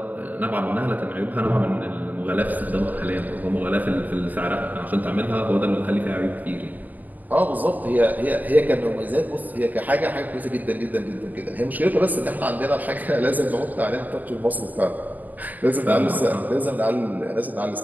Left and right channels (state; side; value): late; left; 0.082 ms